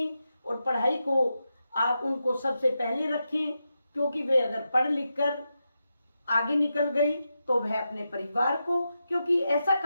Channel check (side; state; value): both; inverted; correlation -0.88